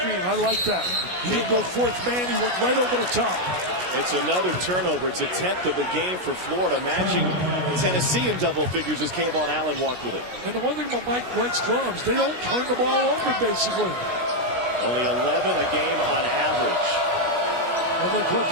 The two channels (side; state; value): left; late; 16 ms